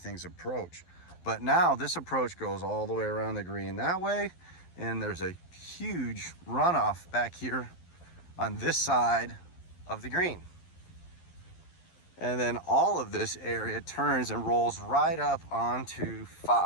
approach. But now this approach goes all the way around the green that way, and there's a huge runoff back here on this side of the green. And then all of this area turns and rolls right up onto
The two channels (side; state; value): right; late; 11 ms